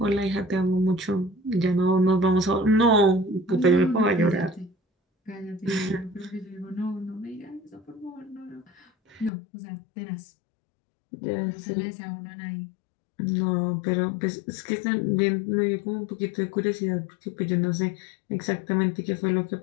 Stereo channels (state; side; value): drops out; right; at 9.3 s